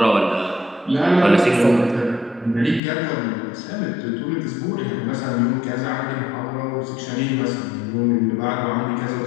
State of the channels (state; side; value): drops out; right; at 2.8 s